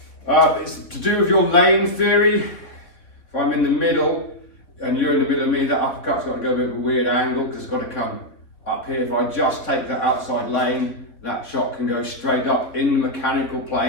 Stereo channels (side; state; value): right; late; 3.8 ms